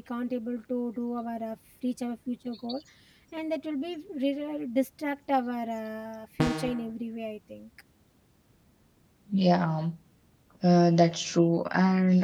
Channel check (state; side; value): identical; both; correlation 1.00